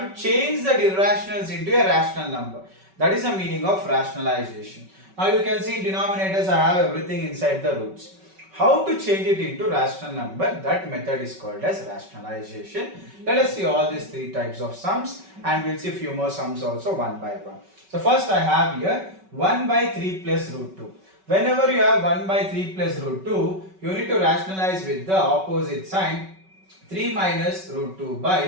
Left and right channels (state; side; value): late; left; 5.3 ms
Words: to change the irrationals into a rational number. That is the meaning of rationalization. Now you can see in denominators I have everything inside the roots. How to change it into rational number? That method is called as rationalization. Let us see all these three types of sums, and we'll see a few more sums also one by one. So first I have here 1 by 3 plus root 2. Whenever you have 1 by 3 plus root 2, you need to rationalize with the opposite sign. 3 minus root 2